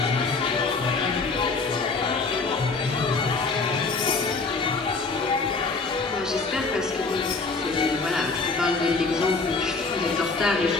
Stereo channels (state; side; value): quieter; right; 4.0 dB